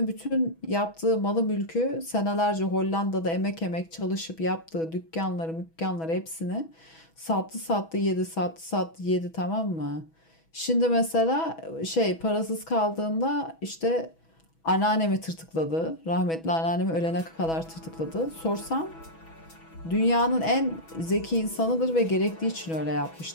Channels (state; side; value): late; right; 6.1 ms